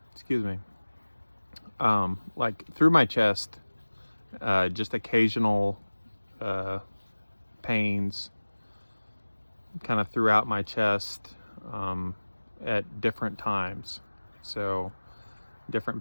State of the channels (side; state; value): both; inverted; correlation -1.00